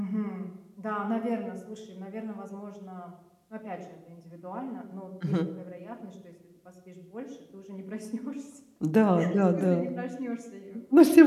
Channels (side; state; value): both; identical; correlation 1.00